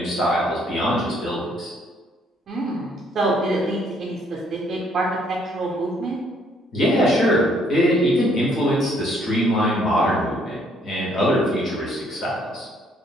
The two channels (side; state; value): both; normal; correlation 0.66